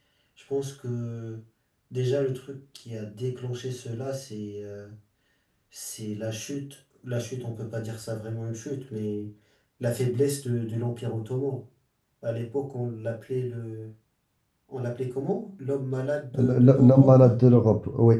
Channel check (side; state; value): both; identical; correlation 1.00